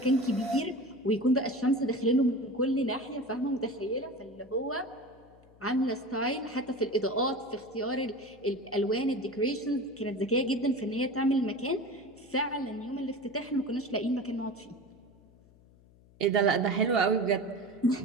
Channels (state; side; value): noise; left; hum, 26 dB below the sound